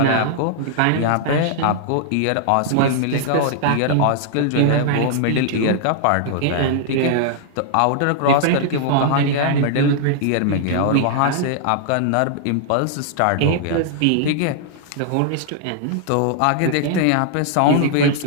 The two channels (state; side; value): different; both; correlation -0.01